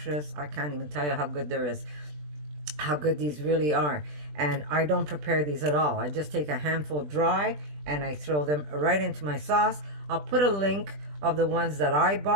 I can't even tell you how good there is, how good these really are. And I don't prepare these at all. I just take a handful dry and I throw them right into my sauce. I'll put a link of the ones that I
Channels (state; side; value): late; left; 20 ms